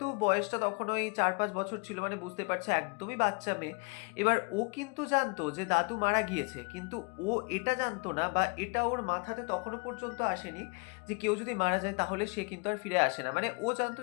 বয়সটা তখন ওই 4-5 বছর ছিল, মানে বুঝতে পারছে একদমই বাচ্চা মেয়ে। এবার ও কিন্তু জানতো যে দাদু মারা গিয়েছে। কিন্তু ও এটা জানতো না, বা এটা ওর মাথাতে তখনো পর্যন্ত আসেনি যে কেউ যদি মারা যায় তাহলে সে কিন্তু আর ফিরে আসে না। মানে ও জানতো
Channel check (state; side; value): quieter; right; 32.8 dB